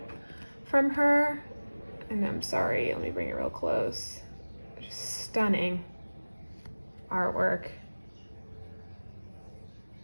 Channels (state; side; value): inverted; both; correlation -1.00